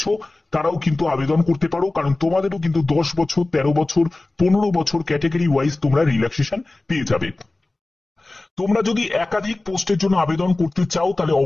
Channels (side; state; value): right; quieter; 3.0 dB